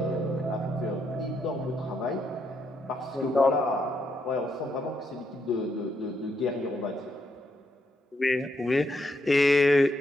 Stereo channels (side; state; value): both; normal; correlation 0.78